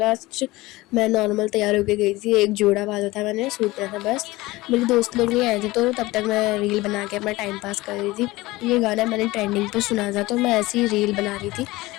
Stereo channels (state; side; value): quieter; right; 19.9 dB